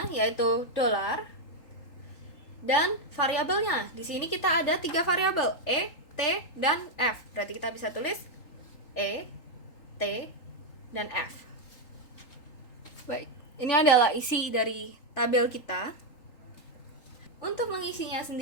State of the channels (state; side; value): late; right; 3.8 ms